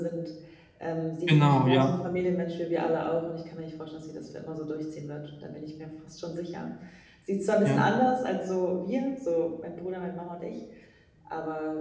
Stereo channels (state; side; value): identical; both; correlation 1.00